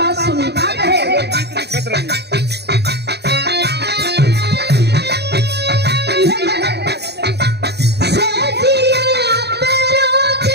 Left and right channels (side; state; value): left; late; 0.48 ms